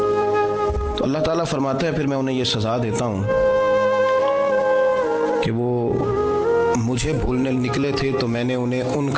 تو اللہ تعالیٰ فرماتا ہے پھر میں انہیں یہ سزا دیتا ہوں کہ وہ مجھے بھولنے نکلے تھے تو میں نے انہیں ان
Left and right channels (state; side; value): identical; both; correlation 1.00